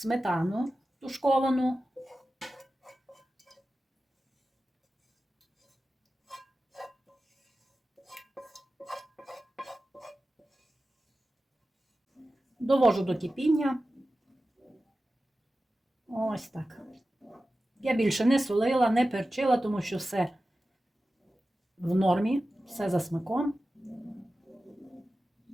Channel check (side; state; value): both; normal; correlation 0.94